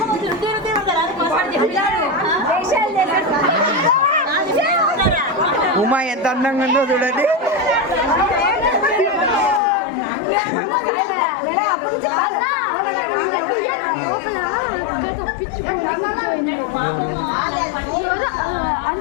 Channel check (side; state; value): right; drops out; at 9.6 s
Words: ఉమా ఎంత అందంగా ఉందో చూడండి.